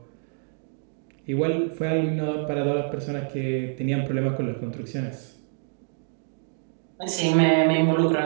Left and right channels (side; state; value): left; silent; digital silence